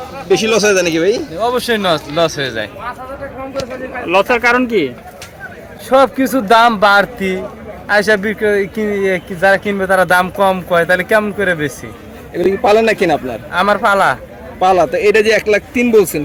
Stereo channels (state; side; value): identical; both; correlation 1.00